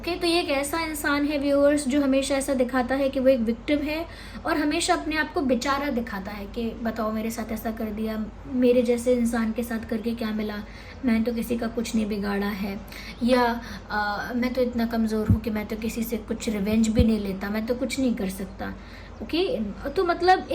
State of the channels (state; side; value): identical; both; correlation 1.00